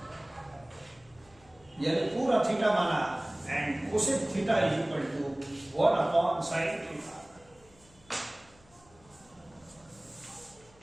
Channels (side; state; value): left; noise; hum, 28 dB below the sound